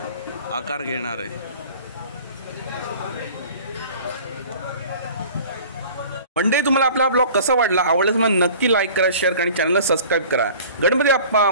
आकार घेणार आहे. मंडळी, तुम्हाला आपला ब्लॉग कसा वाटला, आवडल्यास मग नक्की लाईक करा, शेअर करा आणि चॅनलला सबस्क्राईब करा. गणपती बाप्पा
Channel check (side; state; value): both; inverted; correlation -0.45